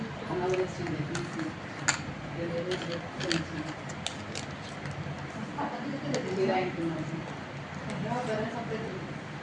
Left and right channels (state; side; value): identical; both; correlation 1.00